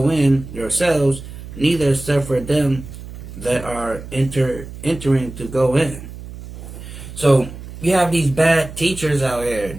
in yourselves, neither suffer them that are entering to go in. So you have these bad teachers out here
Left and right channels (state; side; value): noise; right; hum, 13 dB below the sound